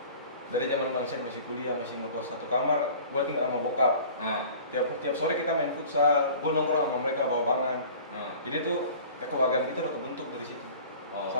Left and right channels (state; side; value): inverted; both; correlation -0.44